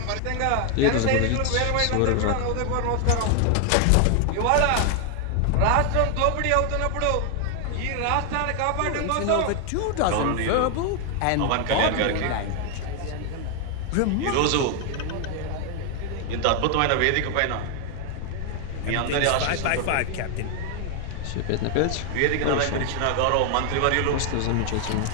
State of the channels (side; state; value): both; different; correlation 0.00